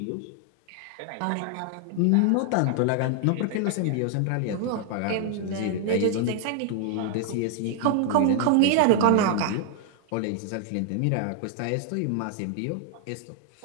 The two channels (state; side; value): different; both; correlation 0.00